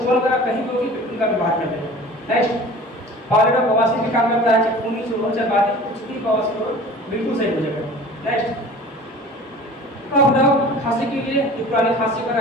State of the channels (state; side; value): normal; both; correlation 0.43